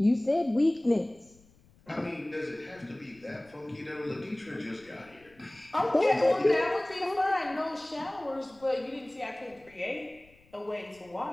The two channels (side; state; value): left; noise; rumble, 29 dB below the sound